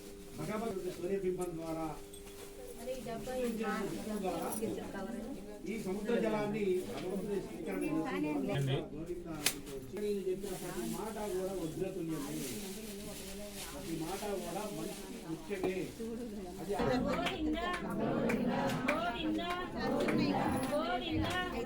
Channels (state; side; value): identical; both; correlation 1.00